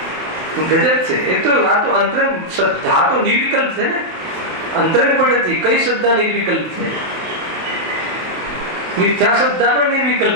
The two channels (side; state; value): left; late; 27 ms